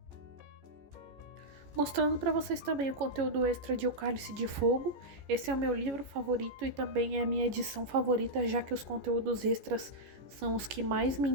Mostrando para vocês também o conteúdo extra de O Cálice de Fogo. Esse é o meu livro favorito e também é a minha edição favorita, já que os conteúdos extras são os que mais me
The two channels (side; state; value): left; late; 14 ms